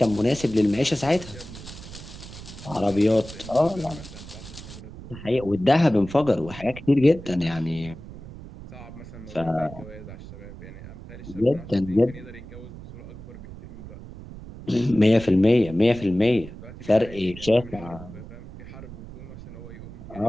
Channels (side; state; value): right; noise; rumble, 14 dB below the sound